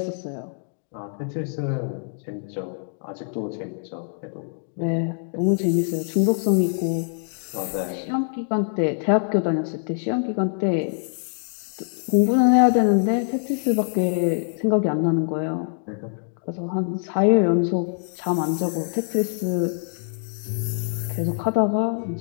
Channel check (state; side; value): silent; right; digital silence